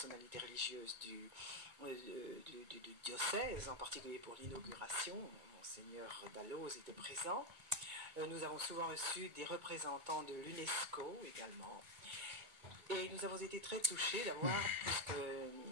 religieuses du diocèse, en particulier pour l'inauguration, Monseigneur Dalloz était présent. Nous avons souvent reçu des représentants de l'UNESCO également. Et nous avons été très touchés d'avoir, puisque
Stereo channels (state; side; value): late; left; 2.2 ms